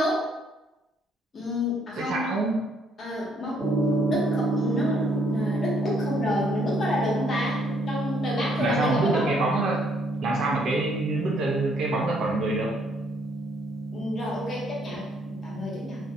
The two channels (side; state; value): both; normal; correlation 0.68